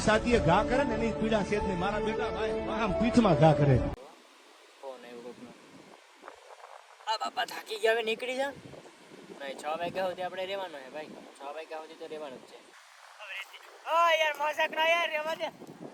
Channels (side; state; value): both; identical; correlation 1.00